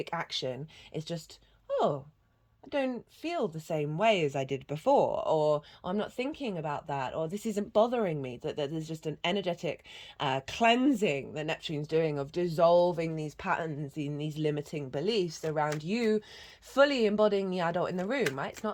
action. It's just, oh, I don't feel the same way as I did before, or I'm not thinking about that, or this isn't bothering me. That there's just an energetic cleansing that Neptune's doing of dissolving these patterns in these limiting beliefs around you, fully embodying the adult in the room, right? It's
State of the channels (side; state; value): both; identical; correlation 1.00